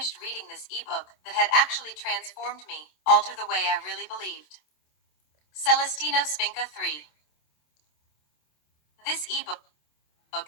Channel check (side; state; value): right; late; 27 ms